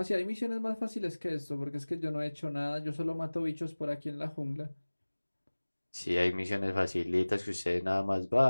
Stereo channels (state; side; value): inverted; both; correlation -1.00